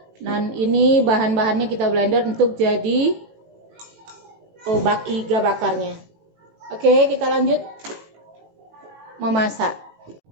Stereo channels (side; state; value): left; late; 18 ms